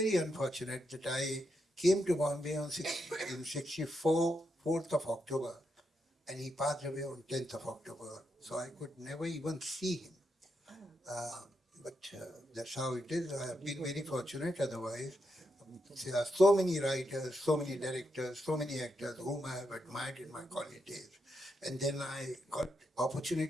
unfortunate that I came to Bombay in 64, 4th of October, and he passed away on 10th of October. So I could never even see him. But that's how it is. I have been very fortunate otherwise. There are so many writers, so many directors, so many actors whom I have admired in my college days. And then I got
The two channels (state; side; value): normal; both; correlation 0.82